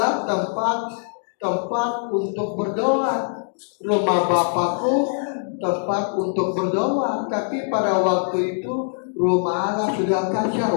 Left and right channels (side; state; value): right; silent; digital silence